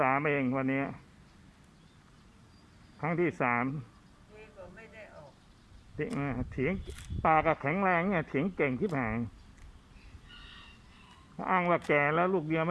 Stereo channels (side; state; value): both; identical; correlation 1.00